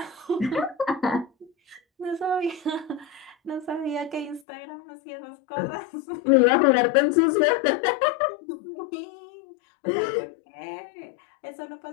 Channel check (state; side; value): drops out; right; at 4.4 s